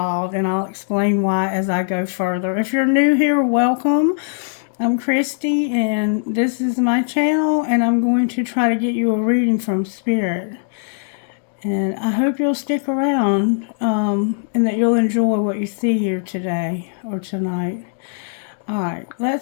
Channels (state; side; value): silent; right; digital silence